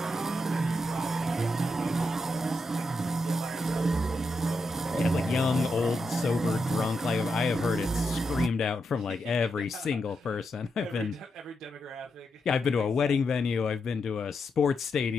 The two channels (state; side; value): normal; both; correlation 0.84